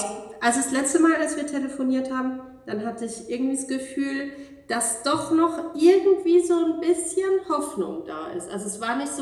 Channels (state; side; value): identical; both; correlation 1.00